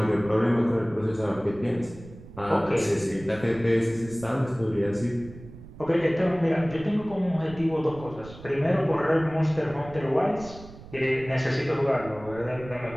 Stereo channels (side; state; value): right; noise; rumble, 17 dB below the sound